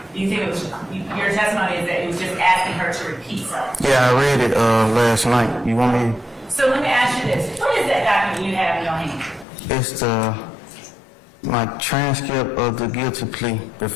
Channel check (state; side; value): drops out; right; at 9.5 s